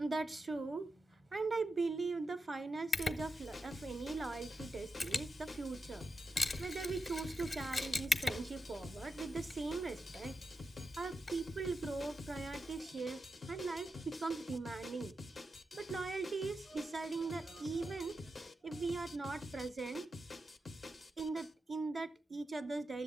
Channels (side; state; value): both; normal; correlation 0.88